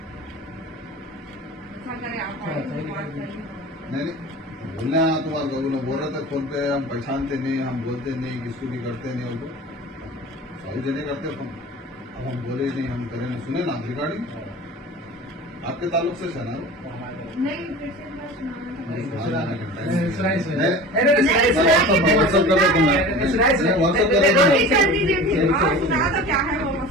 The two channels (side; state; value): both; normal; correlation 0.37